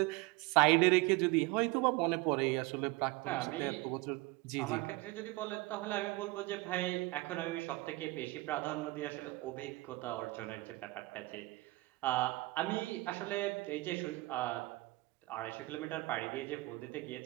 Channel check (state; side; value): quieter; left; 22.0 dB